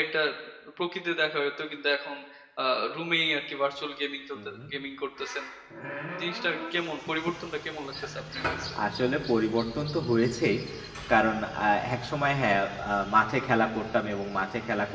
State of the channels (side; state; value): both; identical; correlation 1.00